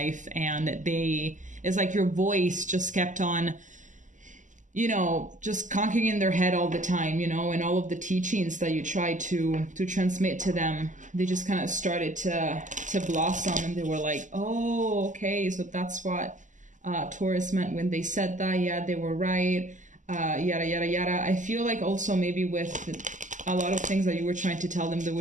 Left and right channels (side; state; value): left; late; 0.37 ms